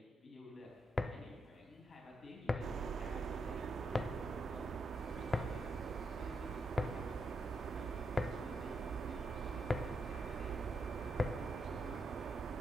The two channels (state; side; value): normal; both; correlation 0.82